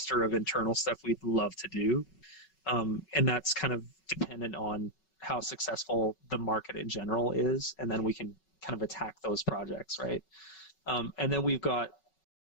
of internal stuff we'd love to do. And that's kind of dependent on how successful the market in general is, and then we can kind of attack those projects, right? And then we've got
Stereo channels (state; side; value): late; right; 5.3 ms